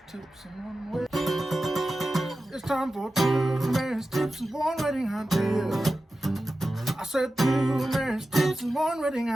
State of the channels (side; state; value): both; normal; correlation 0.94